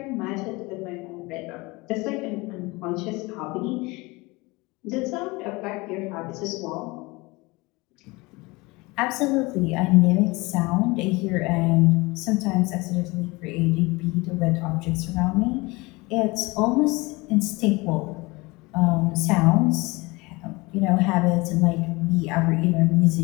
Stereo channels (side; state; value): right; quieter; 23.8 dB